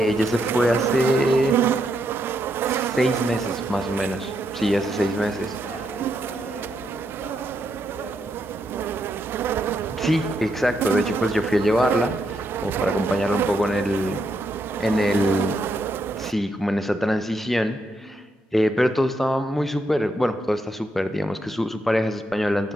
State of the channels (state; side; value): normal; both; correlation 0.79